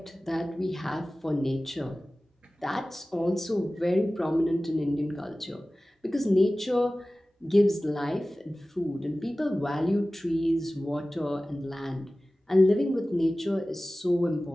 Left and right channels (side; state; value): both; normal; correlation 0.97